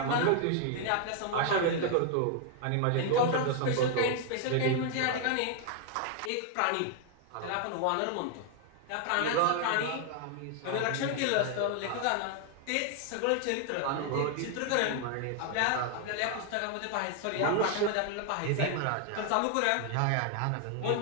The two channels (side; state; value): both; different; correlation 0.00